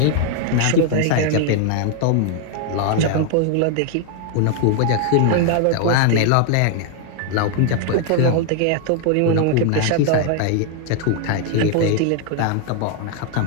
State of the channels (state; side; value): different; both; correlation 0.00